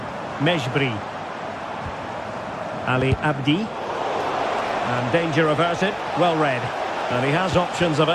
Mejbri. Ali Abdi. And danger averted. Well read. And he has options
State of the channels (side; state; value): both; identical; correlation 1.00